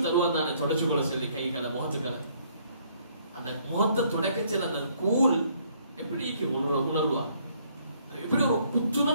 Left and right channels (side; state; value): both; inverted; correlation -0.65